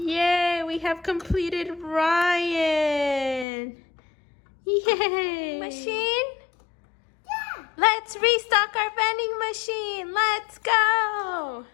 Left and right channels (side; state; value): right; drops out; at 3.5 s